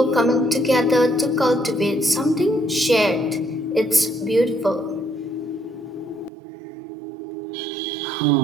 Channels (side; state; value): left; drops out; at 6.3 s